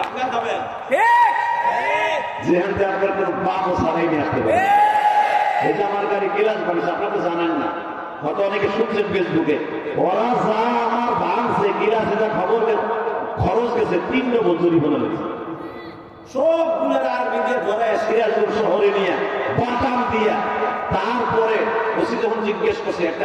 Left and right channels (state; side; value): identical; both; correlation 1.00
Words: খাবেন যেখান থেকে আপনার কোনো পাপও ছাড়াই নিয়ে আসতে পারে। এই যে আমার গাড়ি গিলাস বানিয়েছে, আপনারা তো জানেন না, হয়তো অনেকে শুনছেন ফেসবুকে, ওরা যা আমার ভাঙছে গিলাস, এটা খবর খরচ গেছে 3 ডবল জরিমানা লেগেছে। সবগুলোর আর্মি দিয়ে ধরে সিরাজপুর শহরে নিয়ে বাটাম দিয়া, তারপরে ওসি যখন জিজ্ঞেস করছে, একটা